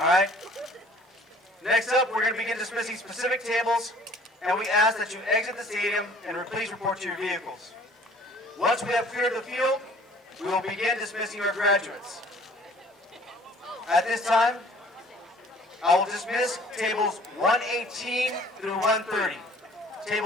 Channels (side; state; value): both; normal; correlation 0.53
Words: right. Next up, we're going to begin dismissing specific tables, and we ask that you exit the stadium and please report to your vehicles. Once we have cleared the field, we will begin dismissing our graduates. At this time, I will dismiss tables 118 through 130.